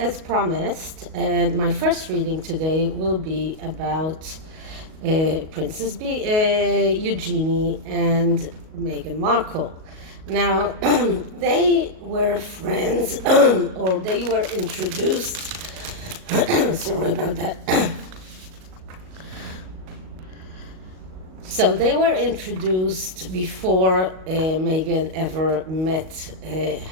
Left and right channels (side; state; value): left; late; 38 ms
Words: promised, my first reading today will be about Princess Eugenie and Meghan Markle. Now, they were friends, or they were introduced. Sorry about that. So they were introduced before Meghan ever met